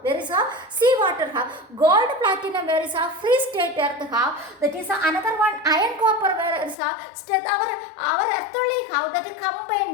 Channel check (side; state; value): right; drops out; at 6.8 s